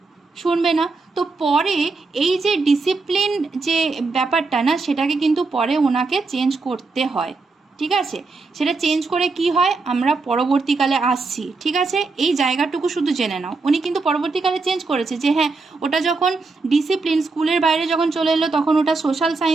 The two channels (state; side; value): quieter; left; 3.9 dB